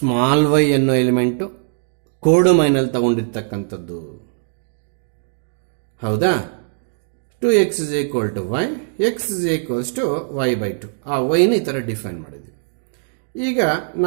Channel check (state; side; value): silent; left; digital silence